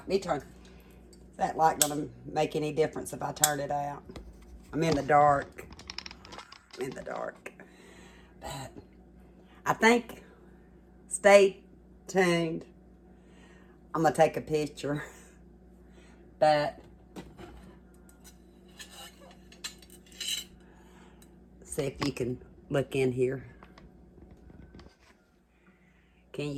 Is that like going to make any difference if I turn it out? I'm in the dark. I'm in the dark. But I think, stay tuned. I'm going to take a picture. But see if you can look in here. Can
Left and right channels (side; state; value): both; identical; correlation 1.00